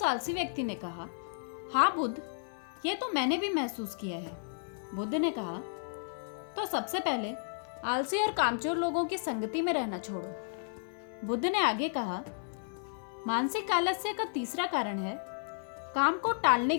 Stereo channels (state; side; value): silent; right; 56 dB below the other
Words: आलसी व्यक्ति ने कहा, हाँ बुद्ध, यह तो मैंने भी महसूस किया है। बुद्ध ने कहा, तो सबसे पहले आलसी और कामचोर लोगों की संगति में रहना छोड़ो। बुद्ध ने आगे कहा, मानसिक आलस्य का तीसरा कारण है काम को टालने